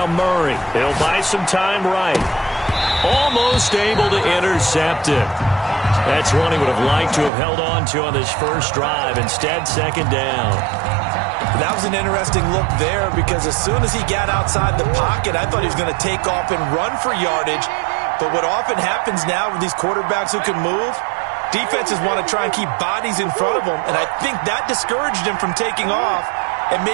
Murray. He'll buy some time right. Almost able to intercept it. That's one he would have liked to have held on to on this first drive. Instead, 2nd down. That was an interesting look there because as soon as he got outside the pocket, I thought he was going to take off and run for yardage. But what often happens now with these quarterbacks who can move, Defenses want to try and keep bodies in front of them, and I think that discouraged him from taking off and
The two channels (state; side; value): drops out; left; at 7.3 s